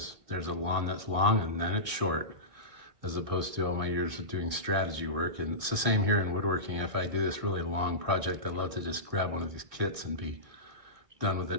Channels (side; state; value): left; late; 2.0 ms